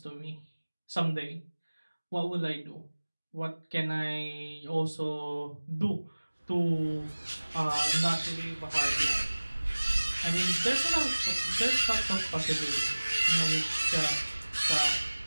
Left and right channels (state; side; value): inverted; both; correlation -1.00